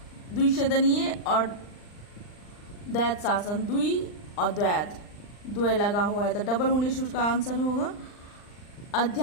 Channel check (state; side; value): late; right; 39 ms